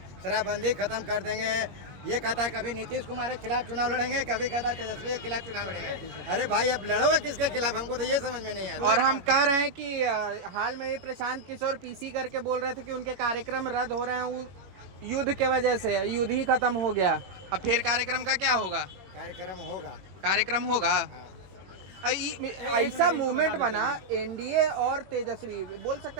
खत्म कर देंगे। ये कहता है कभी नीतीश कुमार के खिलाफ चुनाव लड़ेंगे, कभी कहता है तेजस्वी के खिलाफ चुनाव लड़ेंगे। अरे भाई अब लड़ोगे किसके खिलाफ, हमको तो ये समझ में नहीं आता। और हम कह रहे हैं कि हाल में ही प्रशांत किशोर पीसी करके बोल रहे थे कि उनके कार्यक्रम रद्द हो रहे हैं युद्ध के वजह से, युद्ध ही खत्म हो गया। अब फिर कार्यक्रम का क्या होगा? कार्यक्रम होगा। ऐसा मूवमेंट बना एनडीए और तेजस्वी, बोल सकते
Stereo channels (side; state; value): left; late; 21 ms